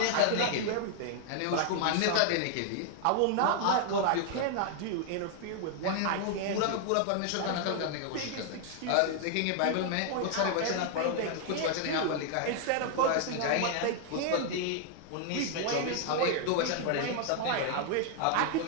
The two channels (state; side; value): different; both; correlation 0.00